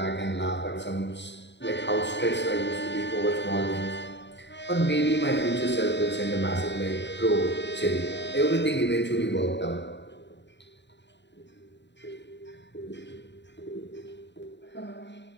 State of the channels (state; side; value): late; right; 0.52 ms